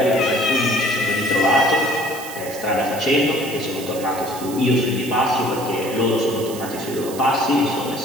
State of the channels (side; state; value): right; noise; hiss, 13 dB below the sound